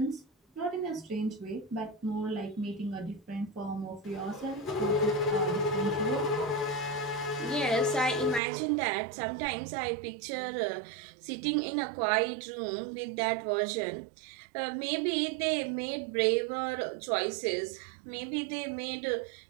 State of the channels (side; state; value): left; drops out; at 8.4 s